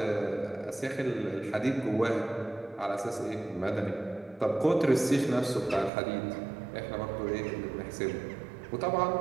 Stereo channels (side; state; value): left; drops out; at 5.9 s